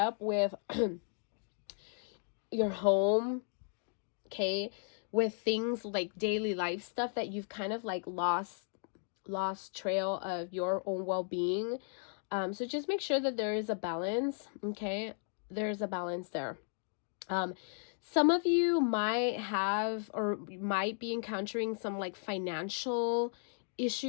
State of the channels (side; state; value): right; silent; 54 dB below the other